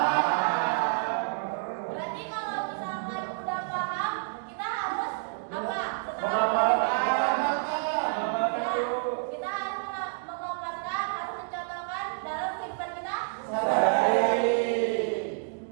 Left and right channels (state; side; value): silent; left; digital silence